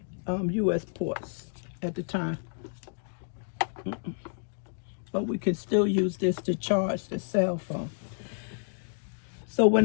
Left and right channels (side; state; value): right; silent; digital silence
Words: US ports at the time. But we can still use this to charge the cell phone. So when